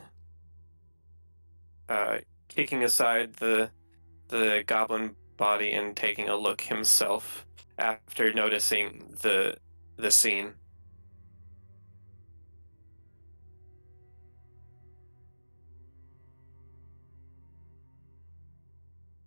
Kicking aside the goblin body and taking a look himself after noticing the scene.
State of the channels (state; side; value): inverted; both; correlation -1.00